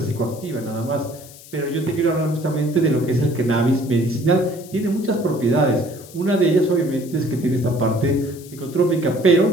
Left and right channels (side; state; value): left; noise; hiss, 19 dB below the sound